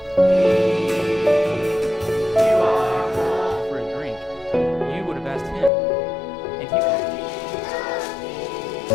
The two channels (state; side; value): drops out; right; at 5.7 s